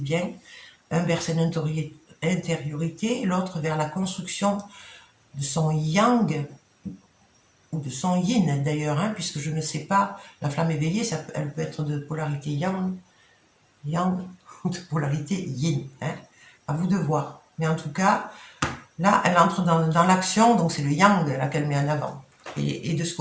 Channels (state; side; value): identical; both; correlation 1.00